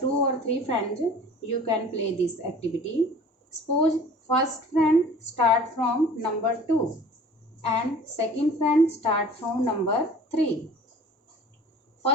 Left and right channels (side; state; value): both; normal; correlation 0.46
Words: 2 or 3 friends, you can play this activity. Suppose first friend start from number 2 and second friend start from number 3.